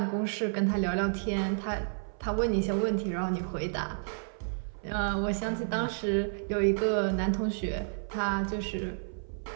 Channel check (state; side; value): silent; left; 57 dB below the other